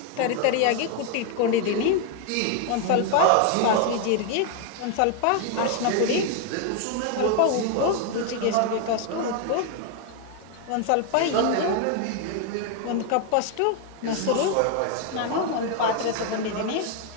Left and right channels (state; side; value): different; both; correlation 0.01